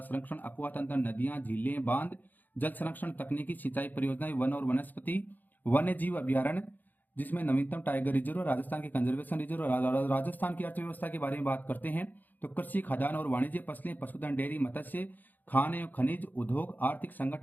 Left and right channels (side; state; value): right; late; 0.085 ms